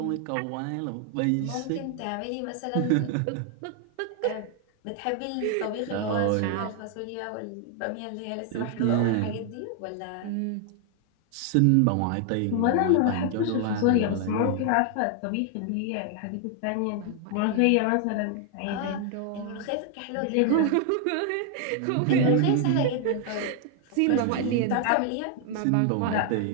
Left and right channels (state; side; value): different; both; correlation 0.00